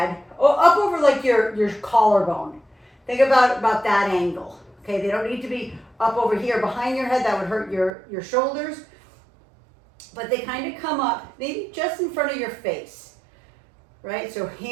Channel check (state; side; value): drops out; left; at 7.9 s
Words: up over like your collarbone. Think about that angle, okay? They don't need to be up over here behind your head. That would hurt your shoulders. But they kind of come up maybe just in front of your face, right? So